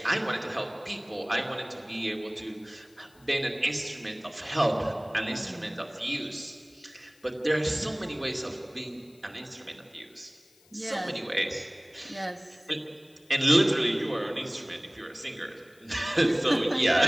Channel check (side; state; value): left; noise; hiss, 29 dB below the sound